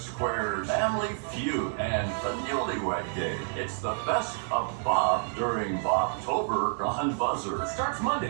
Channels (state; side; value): silent; left; digital silence